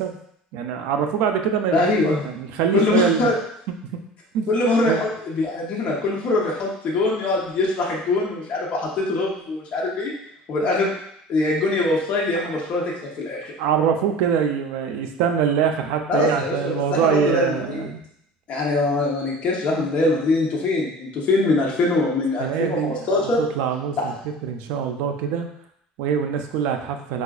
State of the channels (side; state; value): both; normal; correlation 0.38